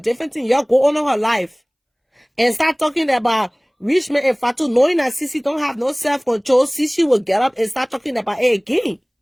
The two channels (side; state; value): both; identical; correlation 1.00